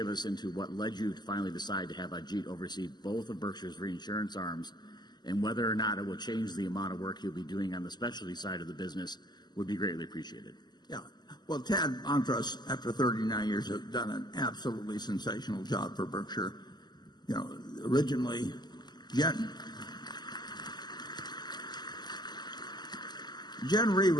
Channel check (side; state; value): right; late; 0.21 ms